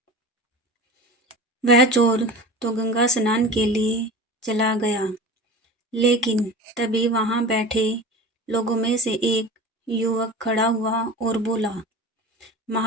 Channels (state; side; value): normal; both; correlation 0.34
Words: वह चोर तो गंगा स्नान के लिए चला गया, लेकिन तभी वहां बैठे लोगों में से एक युवक खड़ा हुआ और बोला,